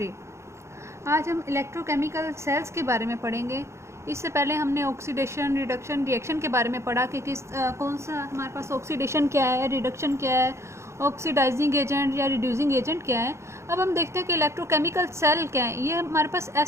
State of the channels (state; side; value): late; left; 0.13 ms